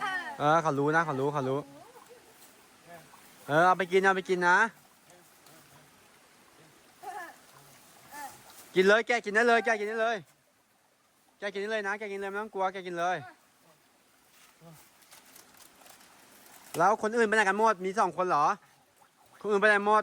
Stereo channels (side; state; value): both; identical; correlation 1.00